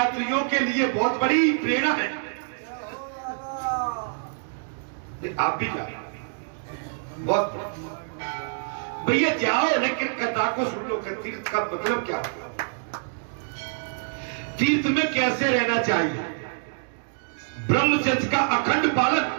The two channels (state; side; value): silent; left; 61 dB below the other